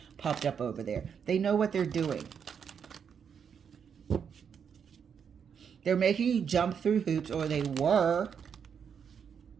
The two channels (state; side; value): quieter; left; 7.2 dB